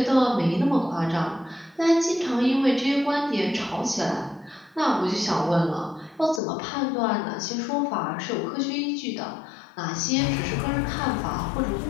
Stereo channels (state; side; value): drops out; right; at 6.4 s